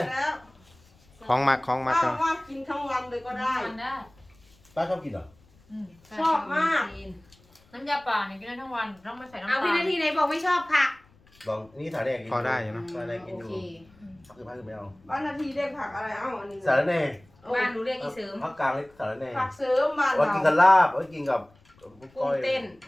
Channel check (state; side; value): noise; left; rumble, 30 dB below the sound